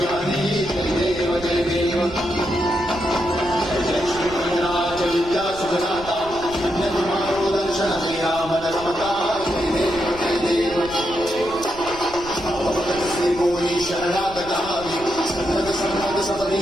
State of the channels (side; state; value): right; noise; rumble, 17 dB below the sound